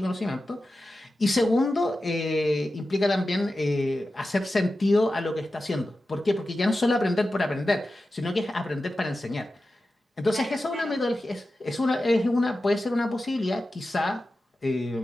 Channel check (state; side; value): normal; both; correlation 0.93